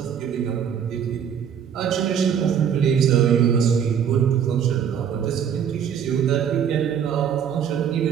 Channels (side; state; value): left; quieter; 8.2 dB